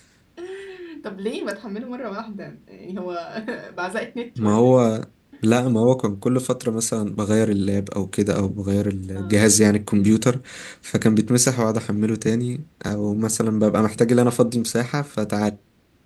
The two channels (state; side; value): identical; both; correlation 1.00